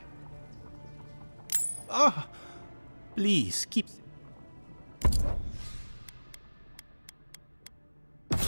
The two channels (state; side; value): inverted; both; correlation -1.00